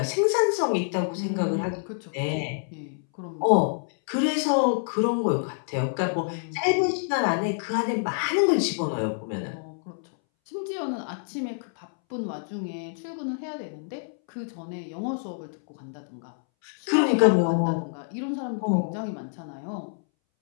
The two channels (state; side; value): silent; right; 60 dB below the other